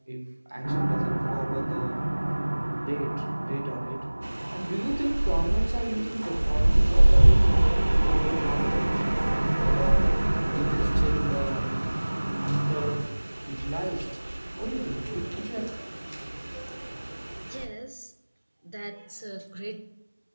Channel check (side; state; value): both; inverted; correlation -1.00